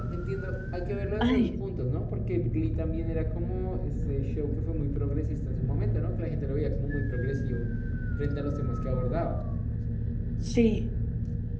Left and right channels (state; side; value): identical; both; correlation 1.00